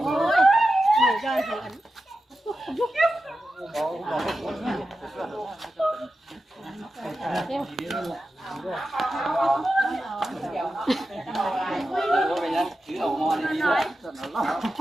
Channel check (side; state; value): both; normal; correlation 0.92